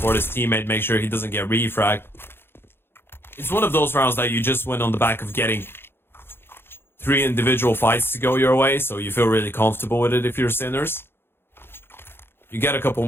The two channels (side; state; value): right; late; 0.11 ms